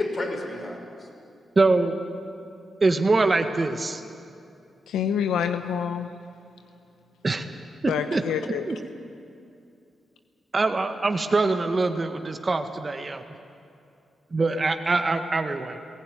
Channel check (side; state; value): both; normal; correlation 0.88